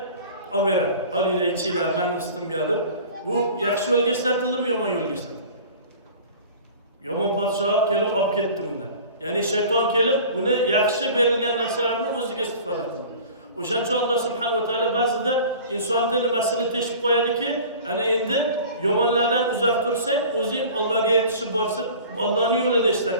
olib beradi. Olinglar, ichinglar, men ustimga deb. Bu yaxshi yo'lga ishlatildimi, yomon yo'lga ishlatildi? Yomon podsho kelib olib ketdi undan. Ya'ni shayton kelib uni yaxshi berilgan narsalarni o'ziga istifoda qildi. O'shaning uchun Alloh subhanahu va taolo ba'zida insonni nimasini teshib qo'yadiki, ana endi yomonlardan uzoq tursang, o'zing Allohga yetishib borsin, Allohning yo'lida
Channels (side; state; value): both; inverted; correlation -0.42